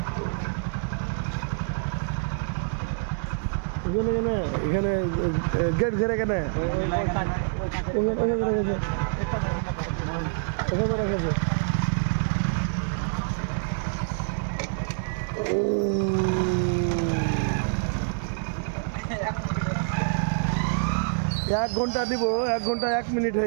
এখানে এখানে গেট ঘেরে কেন ওখানে রেখেছে ওখানে রেখেছে এক ঘন্টা দিব 1 ঘন্টা 1 মিনিট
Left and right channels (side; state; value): left; silent; digital silence